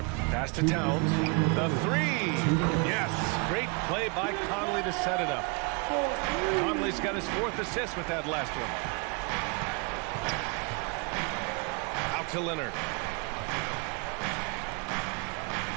Pass to Towns. The 3. Yes. Great play by Conley to set it up. Conley's got his 4th assist with that last one. Out to Leonard.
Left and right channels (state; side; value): quieter; left; 32.4 dB